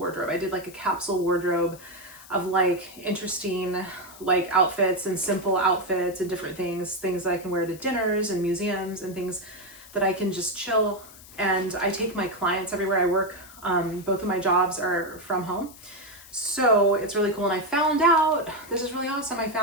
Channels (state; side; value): noise; left; hiss, 20 dB below the sound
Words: I did like a capsule wardrobe of like interesting like outfits and simple outfits and different things that I can wear to dinners and museums and things that I can just chill. And I take my clients everywhere I work. Both of my jobs are from home. So it's really cool. And I found out, this is really awesome. I